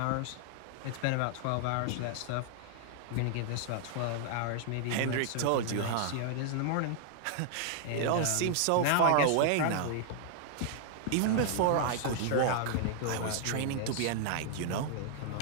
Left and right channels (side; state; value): both; different; correlation -0.01